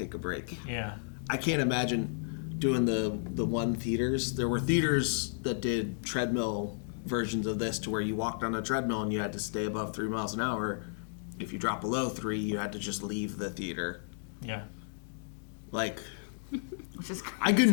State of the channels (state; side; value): silent; right; digital silence